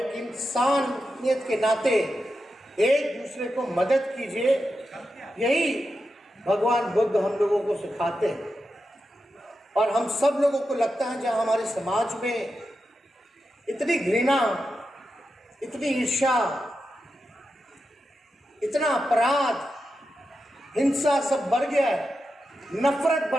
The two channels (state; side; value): normal; both; correlation 0.89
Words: इंसानियत के नाते एक दूसरे को मदद कीजिए। यही भगवान बुद्ध हम लोगों को सिखाते हैं और हम सब लोगों को लगता है जहाँ हमारे समाज में इतनी घृणा, इतनी ईर्ष्या, इतना अपराध, हिंसा सब बढ़ गया है, नफरत